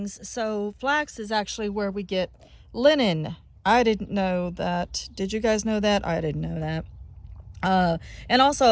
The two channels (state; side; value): identical; both; correlation 1.00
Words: So flax is actually where we get linen. I didn't know that. Did you guys know that? I didn't know that. And